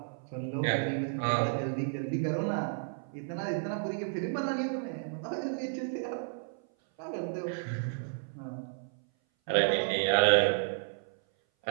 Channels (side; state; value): left; silent; 56 dB below the other